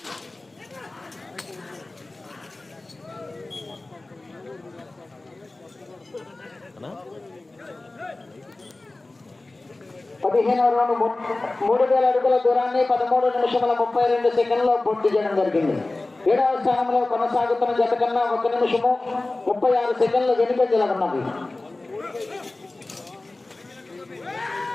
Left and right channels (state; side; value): quieter; right; 3.0 dB